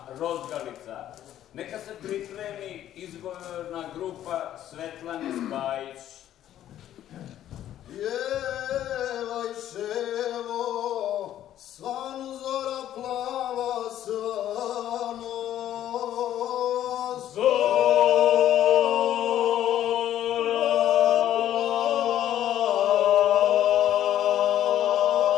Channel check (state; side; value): quieter; right; 11.8 dB